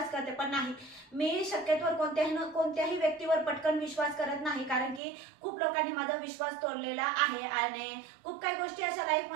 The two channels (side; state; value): left; drops out; at 5.0 s